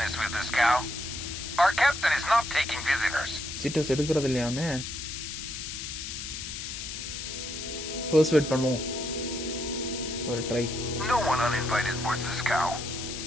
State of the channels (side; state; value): left; noise; hiss, 7 dB below the sound